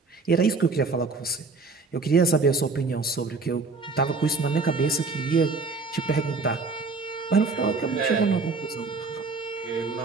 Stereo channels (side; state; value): left; quieter; 4.0 dB